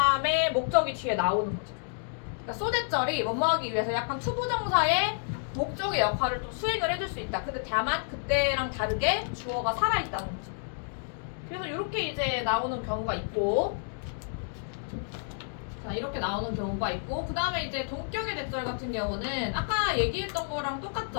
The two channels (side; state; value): right; silent; digital silence